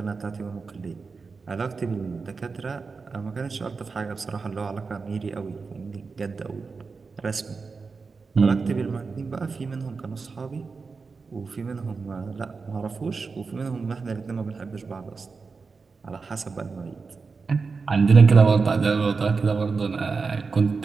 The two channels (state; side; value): quieter; left; 4.7 dB